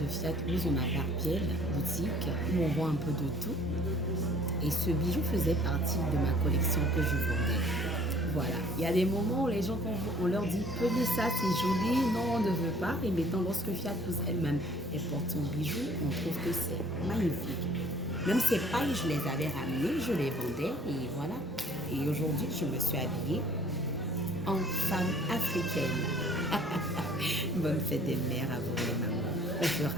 Fiatlouse, on a Barbielle, boutique, où on vend un peu de tout. Et ce bijou faisait partie de ma collection que je vendais. Voilà, il y a des moments où les gens, on leur dit « Prenez ça, c'est joli », non, on ne veut pas. Et maintenant, lorsque Fiatlouse elle-même porte son bijou, on trouve que c'est magnifique. Même ces pailles, je les avais ramenées, je les vendais et voilà. Et aujourd'hui, je me suis habillée en femme africaine. Bonne fête des mères à vous les mamans. On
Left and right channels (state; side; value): normal; both; correlation 0.55